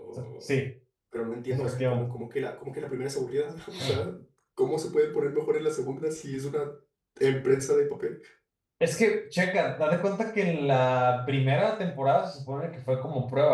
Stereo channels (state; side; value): identical; both; correlation 1.00